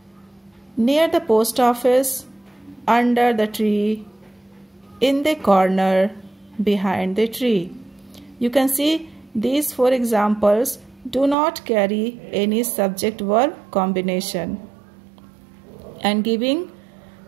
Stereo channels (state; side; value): drops out; left; at 11.4 s